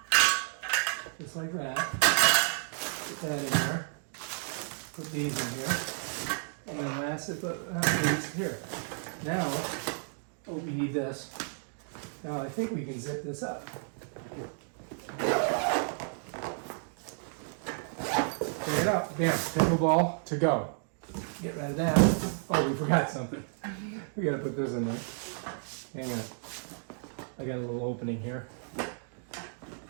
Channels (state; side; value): silent; left; 56 dB below the other